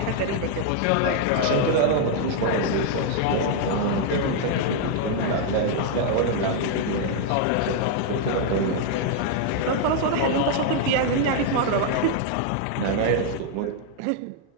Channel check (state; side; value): different; both; correlation 0.00